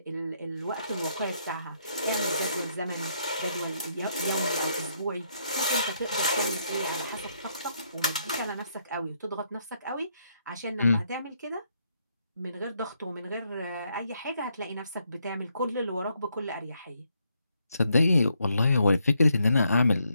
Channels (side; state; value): both; inverted; correlation -0.75